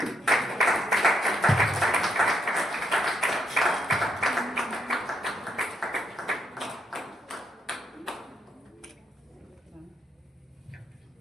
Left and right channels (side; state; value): both; normal; correlation 0.77